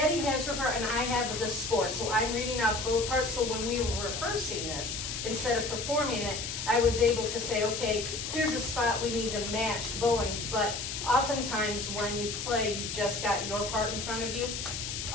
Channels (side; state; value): left; noise; hiss, 5 dB below the sound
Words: has her part and I have the score, so I'm reading off both parts, so when we were rehearsing this, instead of performing it, I was able to say, okay, here's a spot we need to match bowings, but oftentimes when you play, you've just got your part in front of you.